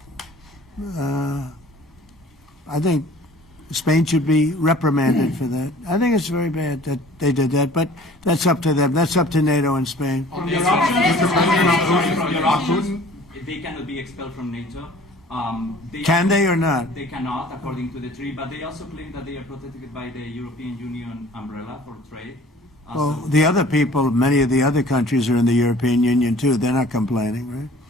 I think Spain should be reprimanded for that. I think it's very bad that they did that, but that's up to them. That's up to NATO and Spain. They cannot be expelled from NATO. Can they or not? They cannot, according to the treaty, but they also claim that they are protected by the European Union umbrella for trade. Well, the other people, many of the other countries are in the European Union too. They're not complaining, right?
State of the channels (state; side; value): normal; both; correlation 0.49